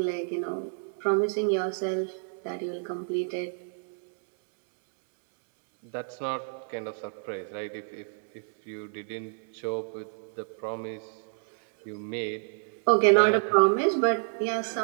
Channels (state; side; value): silent; left; digital silence